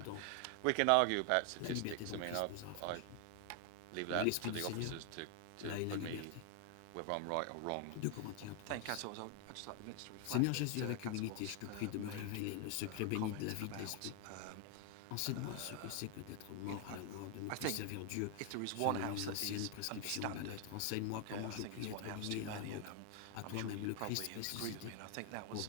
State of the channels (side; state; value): both; different; correlation 0.00